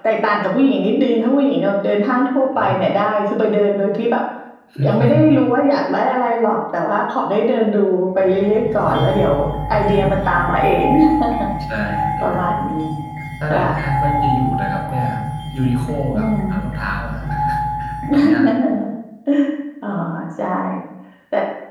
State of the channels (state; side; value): identical; both; correlation 1.00